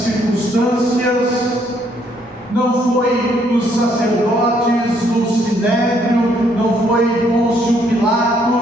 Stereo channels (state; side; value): normal; both; correlation 0.69